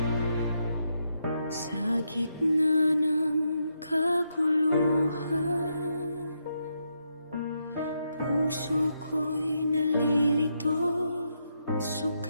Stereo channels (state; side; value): inverted; both; correlation -0.81